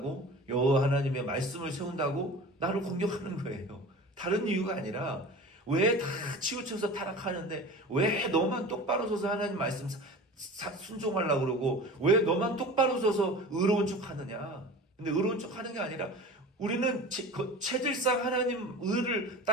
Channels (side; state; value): both; normal; correlation 0.36